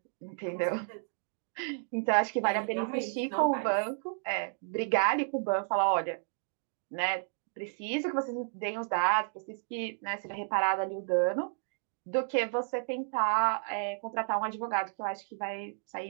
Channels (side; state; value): left; silent; digital silence